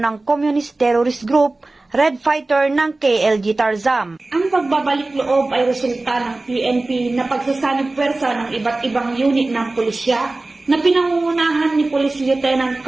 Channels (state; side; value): quieter; left; 3.1 dB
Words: Communist Terrorist Group, Red Fighter ng KLG Tarzam. Ang pagbabalik loob ay resulta ng PNP na pagsasanib pwersa ng iba't ibang unit ng pulisya na pinangungunahan ni Police Lieutenant